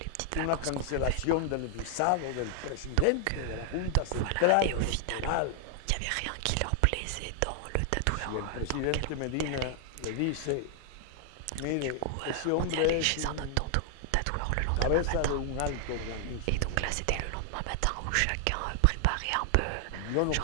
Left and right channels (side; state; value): both; different; correlation 0.00